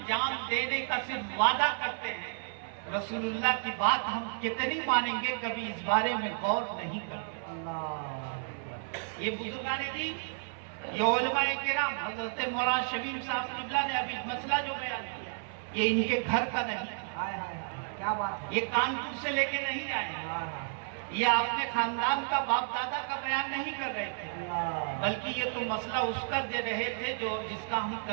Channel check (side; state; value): left; silent; 56 dB below the other